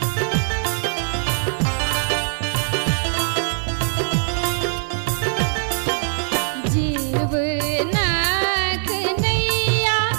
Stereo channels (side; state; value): left; silent; digital silence